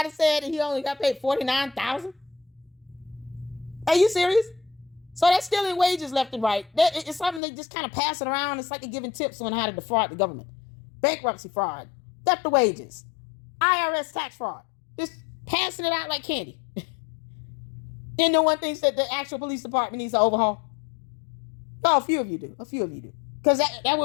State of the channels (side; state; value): right; drops out; at 7.4 s